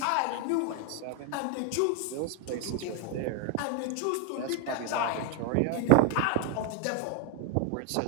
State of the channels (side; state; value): both; different; correlation 0.01